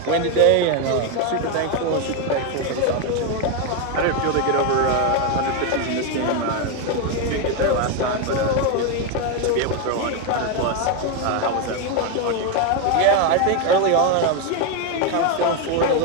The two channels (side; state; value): both; different; correlation 0.02